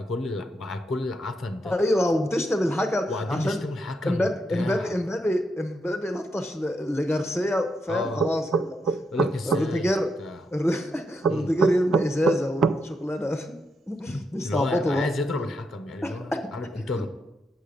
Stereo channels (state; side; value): normal; both; correlation 0.81